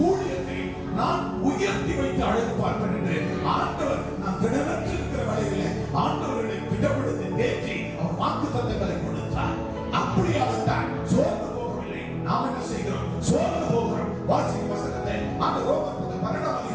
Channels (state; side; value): identical; both; correlation 1.00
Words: ஊழியத்தை நான் உயர்த்தி வைத்து அழகு பார்ப்பேன் என்று ஆண்டவர் நான் திடமற்று இருக்கிற வேலையில ஆண்டவர்களை திடப்படுத்தி தேற்றி அவர் வாக்குத்தத்தங்களை கொடுத்தார். அப்படியாகத்தான் சோர்ந்து போகவில்லை. நாம் என்ன செய்கிறோம்? சோர்ந்து போகிறோம். வாசிக்க வசனத்தை அந்த ரோமர் 12ஆம்